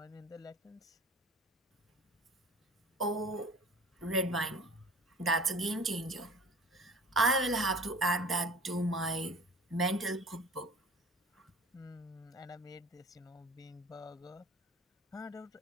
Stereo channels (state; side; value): normal; both; correlation 0.44